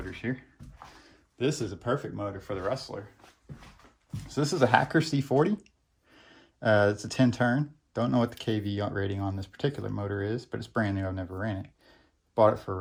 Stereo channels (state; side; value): identical; both; correlation 1.00